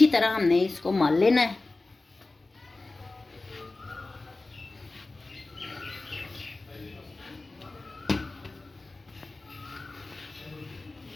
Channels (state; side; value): quieter; right; 3.2 dB